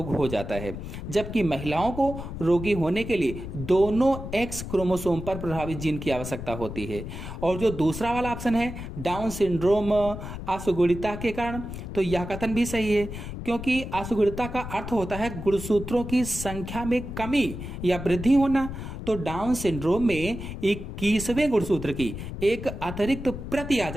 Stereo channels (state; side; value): noise; left; rumble, 8 dB below the sound